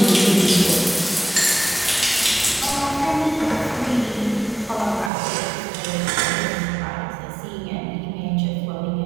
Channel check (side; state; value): left; drops out; at 5.1 s